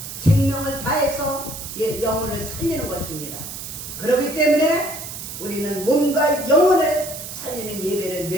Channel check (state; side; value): noise; right; hiss, 9 dB below the sound